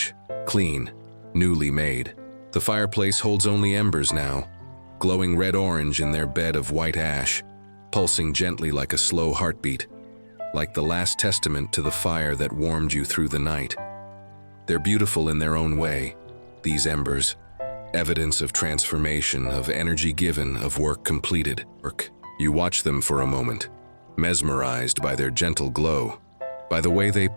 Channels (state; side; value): inverted; both; correlation -1.00